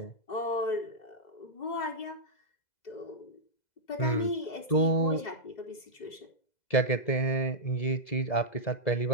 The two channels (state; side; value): late; right; 2.0 ms